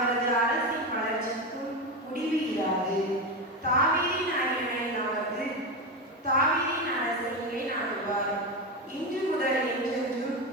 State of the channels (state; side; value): normal; both; correlation 0.16